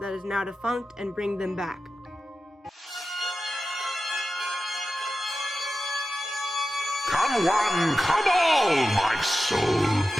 that is now defunct and bring them back. Come one, come all, my soul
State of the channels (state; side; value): normal; both; correlation 0.93